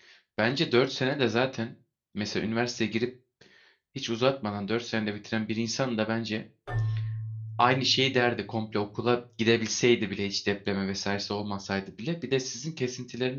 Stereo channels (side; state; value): both; identical; correlation 1.00